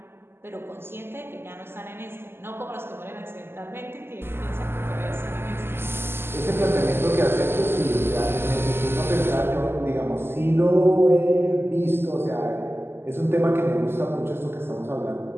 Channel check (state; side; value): late; left; 0.11 ms